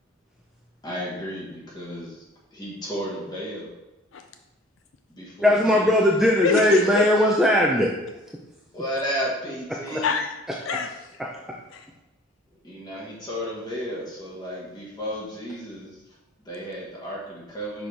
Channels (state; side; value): normal; both; correlation 0.51